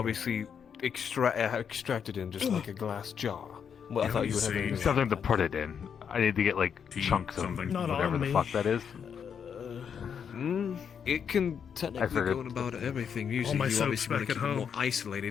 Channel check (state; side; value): quieter; right; 7.4 dB